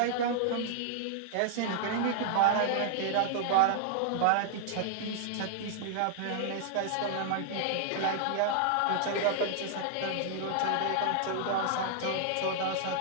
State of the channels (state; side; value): different; both; correlation -0.01